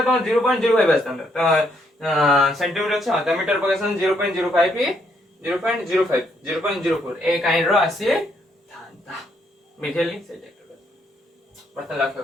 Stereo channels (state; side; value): normal; both; correlation 0.73